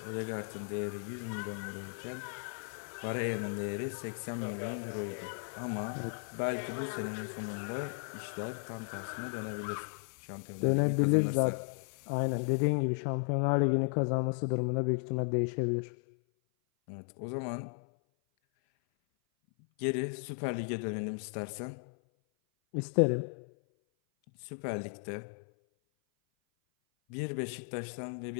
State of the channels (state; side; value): silent; right; 54 dB below the other